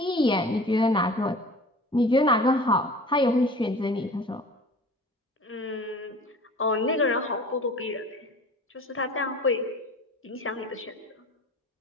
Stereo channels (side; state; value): both; normal; correlation 0.42